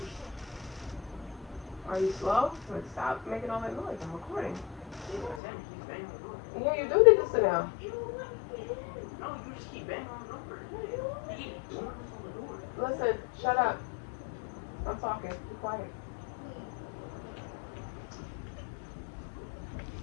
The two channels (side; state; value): right; drops out; at 5.4 s